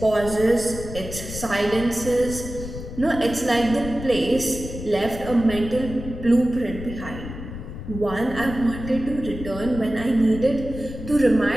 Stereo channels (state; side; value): noise; left; rumble, 10 dB below the sound